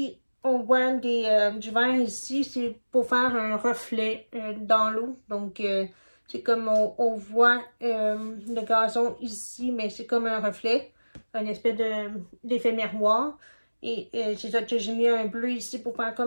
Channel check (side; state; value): both; inverted; correlation -1.00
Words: on voit du vert ici, c'est pour faire un reflet dans l'eau. Donc, c'est comme on voit le gazon ici, mais c'est comme un reflet, un espèce d'effet miroir. Et c'est ça que j'ai mis un bleu ici pour faire